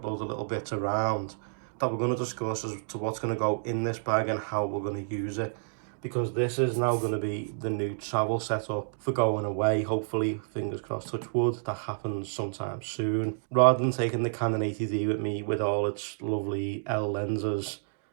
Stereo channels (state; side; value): silent; left; digital silence